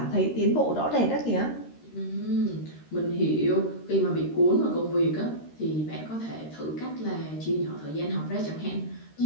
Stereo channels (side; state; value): right; late; 13 ms